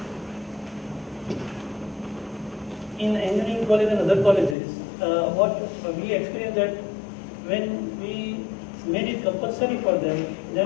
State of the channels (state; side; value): drops out; right; at 4.5 s